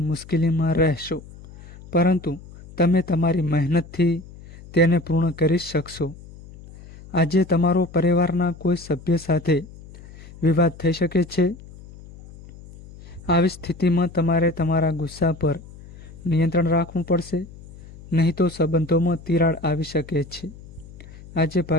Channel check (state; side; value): noise; left; hum, 19 dB below the sound